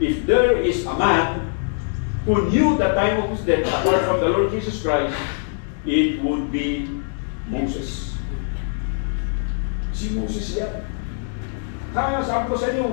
there is a man who knew the time of his death apart from the Lord Jesus Christ, it would be Moses. Si Moses yan. Kaya sabi ko sa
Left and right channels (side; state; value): right; silent; digital silence